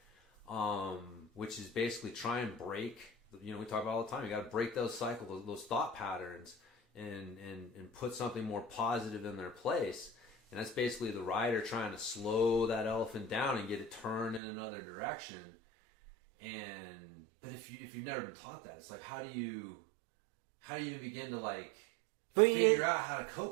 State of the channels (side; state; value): left; drops out; at 14.4 s